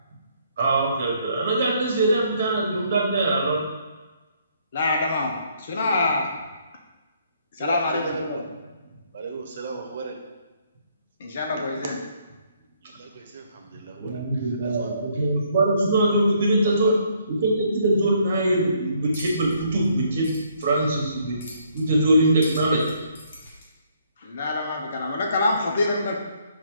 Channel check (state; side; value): inverted; both; correlation -0.68